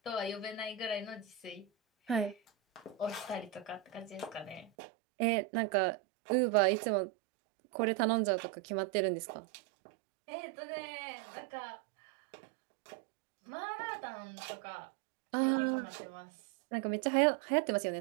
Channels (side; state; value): left; drops out; at 4.7 s